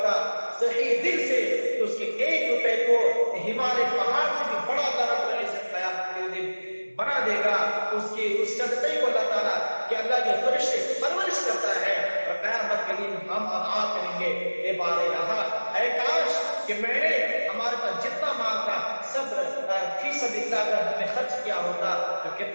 صحیح دل سے تو اس کے 1 روپے کو ہمالیہ پہاڑ سے بھی بڑا رب العزت قیامت کے دن بنا دے گا۔ اس صدقے کو اللہ تعالیٰ کہ اللہ کے فرشتے پرورش کرتا ہے، اور قیامت کے دن ہم آپ کہیں گے اے بار الہ، اے کاش کہ میں نے ہمارے پاس جتنا مال تھا سب فی سبیل اللہ اگر ہم نے خرچ کیا ہوتا تو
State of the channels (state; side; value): inverted; both; correlation -1.00